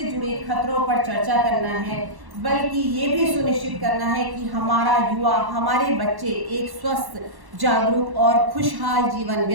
जुड़े खतरों पर चर्चा करना है, बल्कि ये भी सुनिश्चित करना है कि हमारा युवा, हमारे बच्चे एक स्वस्थ, जागरूक और खुशहाल जीवन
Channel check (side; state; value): left; late; 1.1 ms